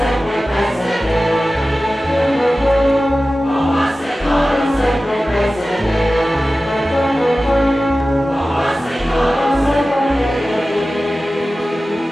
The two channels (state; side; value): normal; both; correlation 0.96